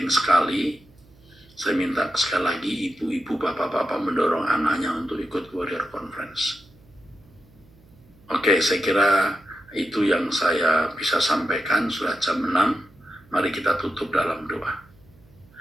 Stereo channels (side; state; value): right; noise; hum, 28 dB below the sound